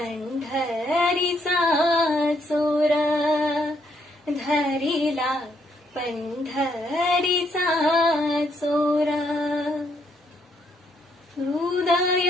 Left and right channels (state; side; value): normal; both; correlation 0.73